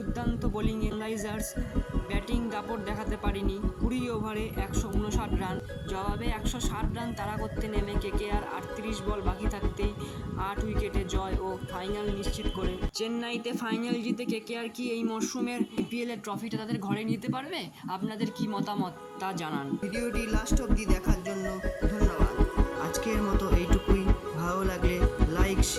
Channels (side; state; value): both; identical; correlation 1.00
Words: বোলিংয়ে সানরাইজার্স ব্যাটিং দাপট দেখাতে পারেনি। 20 ওভারে 159 রান, জবাবে 160 রান তাড়া করতে নেমে কেকেআর 38 বল বাকি থাকতেই 8 উইকেটে জয় ও ফাইনাল নিশ্চিত করে। চেন্নাইতে ফাইনাল জিতে কেকেআর কি এই মরশুমের আইপিএলের ট্রফিটা তাদের ঘরে নিতে পারবে? আপনাদের কি মতামত তা জানান। ভিডিওটি লাস্ট অবধি দেখার জন্য ধন্যবাদ। আজকের মতো এইটুকুই। ভালো লাগলে লাইক